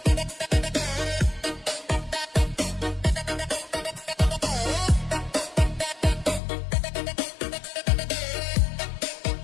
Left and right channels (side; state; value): right; drops out; at 6.4 s